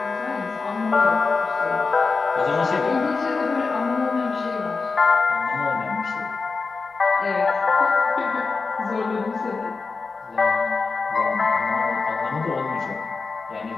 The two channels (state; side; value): quieter; right; 4.4 dB